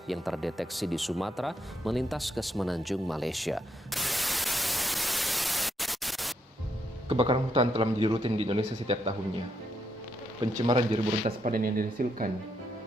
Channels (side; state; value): both; normal; correlation 0.77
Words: yang terdeteksi di Sumatera melintas ke Semenanjung Malaysia. Kebakaran hutan telah menjadi rutin di Indonesia setiap tahunnya. Pencemaran jerebu rentas padan yang dihasilkan